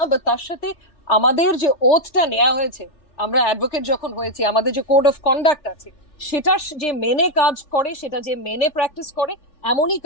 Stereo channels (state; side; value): late; right; 3.4 ms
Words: বা তার সাথে আমাদের যে ওথটা নেওয়া হয়েছে, আমরা অ্যাডভোকেট যখন হয়েছি আমাদের যে কোড অফ কন্ডাক্ট আছে সেটা যে মেনে কাজ করে, সেটা যে মেনে প্র্যাকটিস করে, এমনই